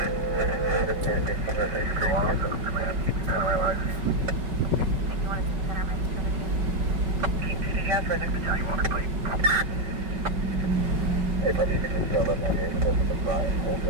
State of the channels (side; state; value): left; late; 5.3 ms